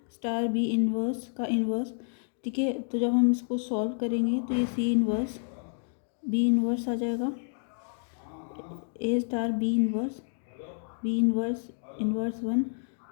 star B inverse का इनवर्स। ठीक है, तो जब हम इसको सॉल्व करेंगे तो ये सी इनवर्स बी इनवर्स आ जाएगा, A star B inverse inverse one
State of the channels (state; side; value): silent; right; digital silence